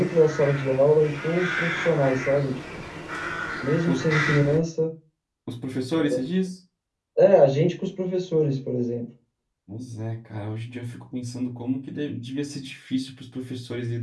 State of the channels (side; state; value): both; identical; correlation 1.00